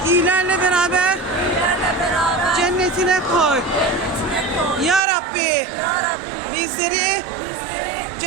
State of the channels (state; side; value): drops out; left; at 5.0 s